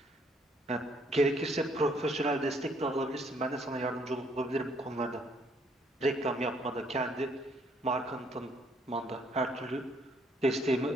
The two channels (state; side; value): normal; both; correlation 0.67